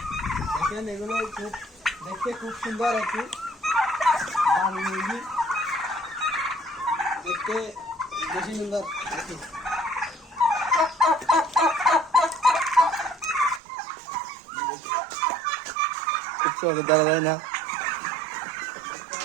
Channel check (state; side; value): drops out; left; at 13.6 s